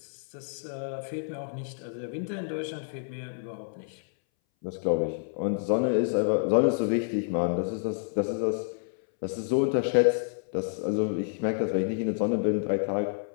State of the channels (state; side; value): silent; right; 59 dB below the other